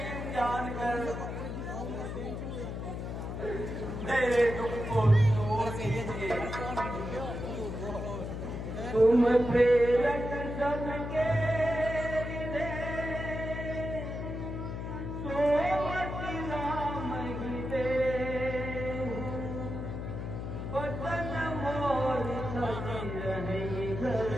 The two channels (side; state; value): left; noise; hum, 5 dB below the sound